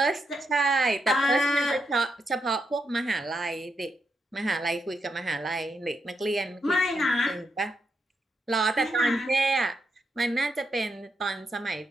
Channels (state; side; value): normal; both; correlation 0.82